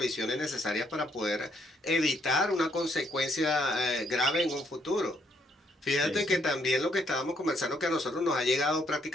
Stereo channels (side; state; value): both; normal; correlation 0.71